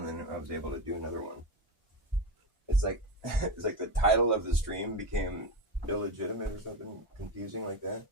then I was able to do another one. It's like it's like the title of the stream became illegitimate or something confusing like that.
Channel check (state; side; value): normal; both; correlation 0.17